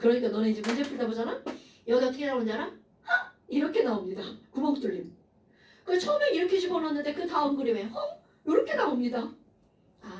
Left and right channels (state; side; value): identical; both; correlation 1.00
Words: 너네 이제 문제 풀다 보잖아. 여기 어떻게 나오는지 알아? 하! 이렇게 나옵니다. 구멍 뚫림. 그 처음에 이렇게 집어넣었는데 그 다음 그림에 이렇게 나옵니다.